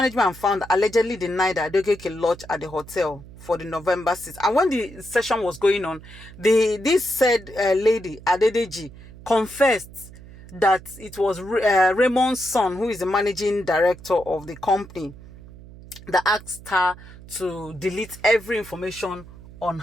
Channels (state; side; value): noise; right; hum, 18 dB below the sound